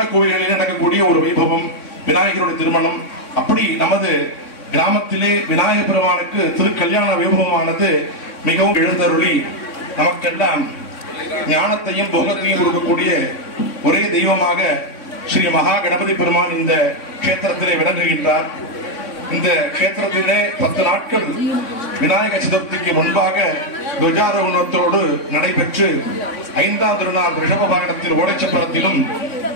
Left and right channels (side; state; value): right; late; 3.6 ms